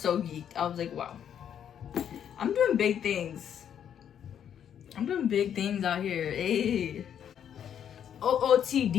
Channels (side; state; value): right; quieter; 9.1 dB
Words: geeked. I was like, wow. I'm doing big things. I'm doing big things out here. Hey.